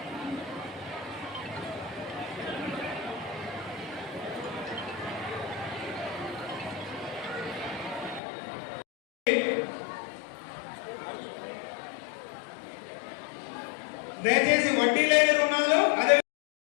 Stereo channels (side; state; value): right; drops out; at 8.2 s